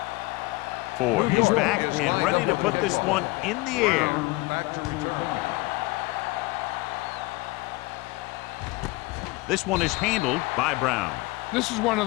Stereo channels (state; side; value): quieter; right; 22.4 dB